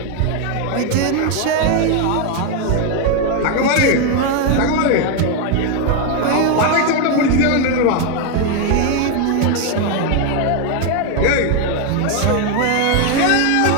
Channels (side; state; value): both; different; correlation 0.01